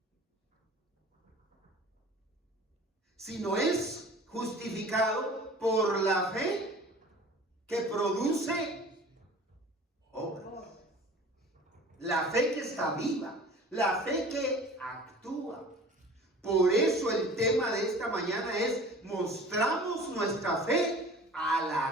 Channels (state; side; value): normal; both; correlation 0.44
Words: sino es justificado por la fe que produce obras. La fe que está viva, la fe que actúa. Por eso el tema de esta mañana es: mostramos nuestra fe al